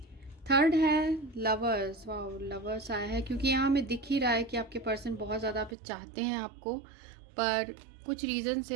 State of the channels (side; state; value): left; drops out; at 5.8 s